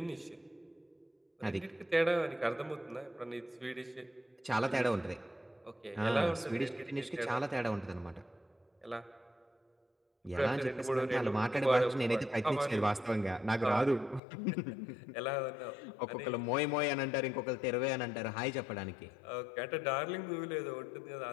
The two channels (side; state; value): right; drops out; at 14.2 s